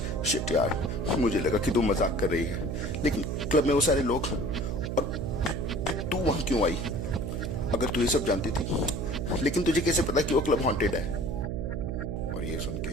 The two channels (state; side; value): noise; right; hum, 3 dB below the sound